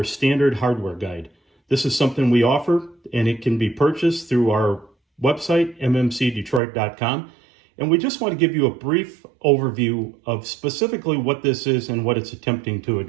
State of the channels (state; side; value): drops out; left; at 6.6 s